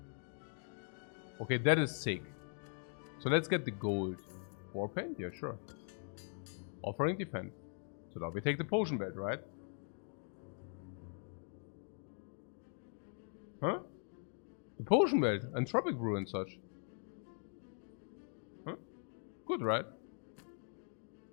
Okay, that is sick. So let's get the gold. War Paint? Yeah, sure. Offering Defense. So now we take the Potion Belt, right? Huh? The Potion Belt. Entropic Brew and such. Huh? Good, right?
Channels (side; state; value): right; silent; 50 dB below the other